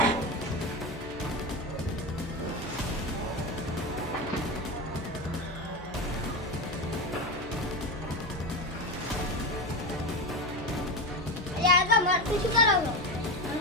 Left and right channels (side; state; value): left; noise; hum, 17 dB below the sound